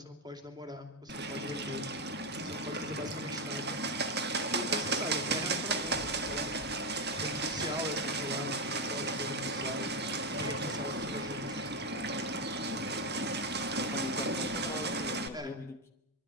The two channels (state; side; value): normal; both; correlation 0.07